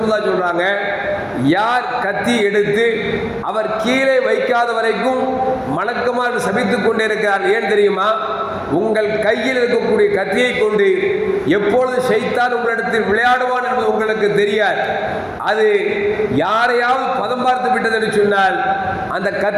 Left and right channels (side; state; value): both; identical; correlation 1.00